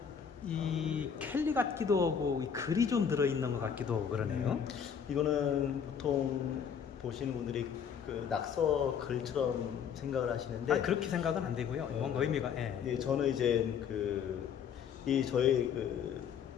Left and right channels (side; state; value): right; quieter; 7.5 dB